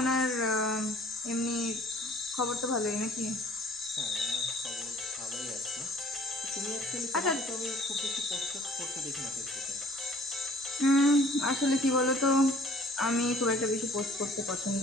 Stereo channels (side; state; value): both; normal; correlation 0.54